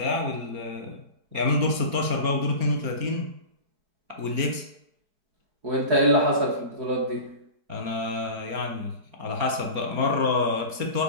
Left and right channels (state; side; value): late; left; 4.3 ms